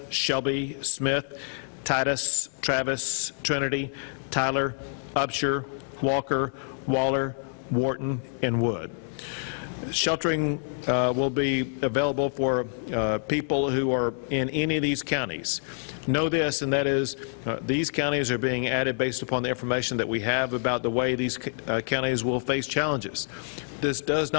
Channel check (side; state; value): right; silent; 60 dB below the other